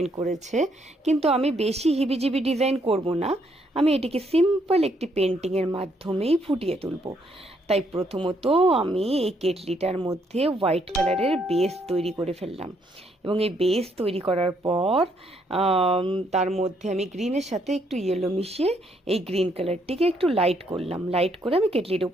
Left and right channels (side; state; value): both; normal; correlation 0.72